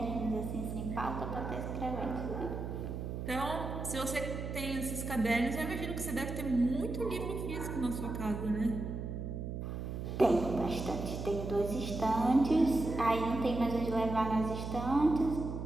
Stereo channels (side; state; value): right; noise; hum, 5 dB below the sound